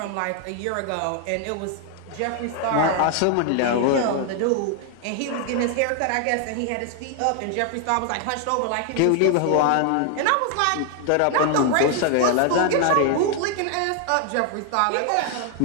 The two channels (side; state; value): both; different; correlation 0.00